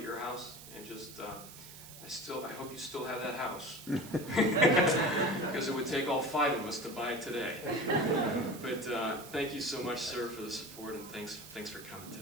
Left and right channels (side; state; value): right; noise; hiss, 15 dB below the sound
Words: your house, and just, I hope you still have that house. Because it would take all 5 of us to buy it today. But thank you so much, sir, for the support, and thanks for coming